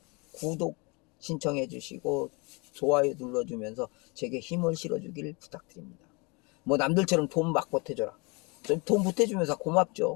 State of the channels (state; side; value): quieter; right; 29.5 dB